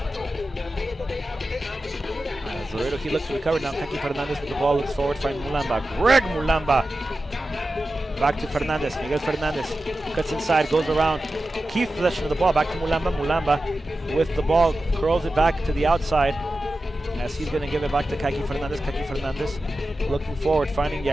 As Laredo Heat looks to recover now, Kaki Fernandez with the ball, looks forward, finds Mulamba. Greg Mulamba. Back to Fernandez, Miguel Fernandez cuts inside, goes around, keeps possession of the ball, back to Mulamba. Mulamba with the ball, curls it back to the outside as he's going to give it back to Kaki Fernandez. Kaki Fernandez looking forward, finding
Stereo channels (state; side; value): normal; both; correlation 0.93